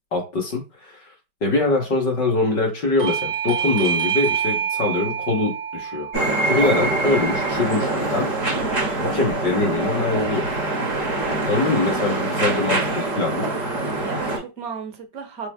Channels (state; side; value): late; right; 5.1 ms